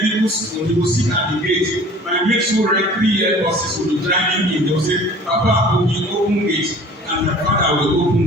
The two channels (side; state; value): both; normal; correlation 0.46